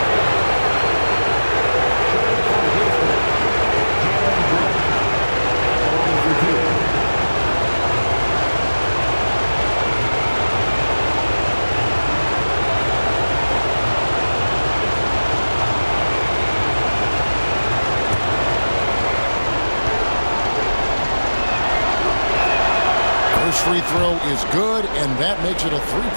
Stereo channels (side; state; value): both; inverted; correlation -1.00